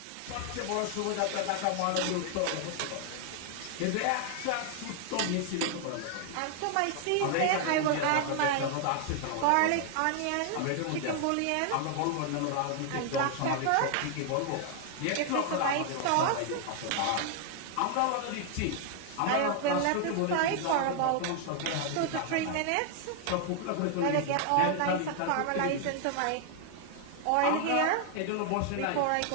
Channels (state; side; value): different; both; correlation 0.00